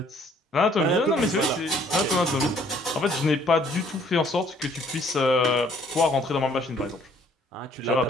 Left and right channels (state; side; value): normal; both; correlation 0.61